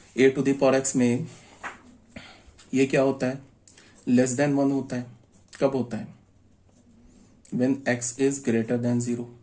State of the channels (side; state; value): both; identical; correlation 1.00